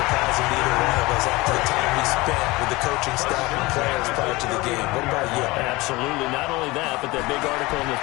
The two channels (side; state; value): right; quieter; 21.9 dB